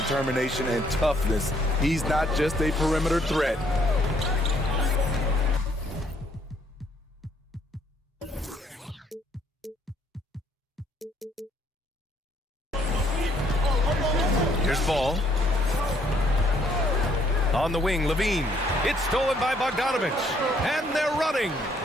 and toughness. He's not just a perimeter threat. Here's Ball. On the wing, Levine. It's stolen by Bogdanovich. And they're running.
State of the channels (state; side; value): normal; both; correlation 0.67